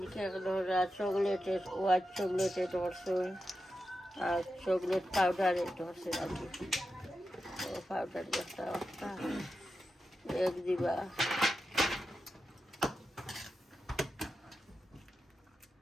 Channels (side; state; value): both; normal; correlation 0.90